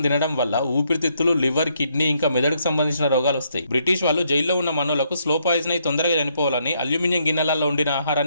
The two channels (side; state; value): both; inverted; correlation -0.73